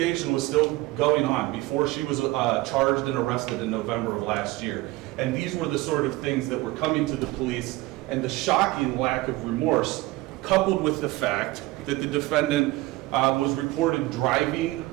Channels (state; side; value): quieter; left; 19.5 dB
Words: was still going on, before she was charged and arrested in November of last year. And these were the sort of things that were coming to the police, and the shocking lack of remorse, coupled with the fact that the defendant was reported driving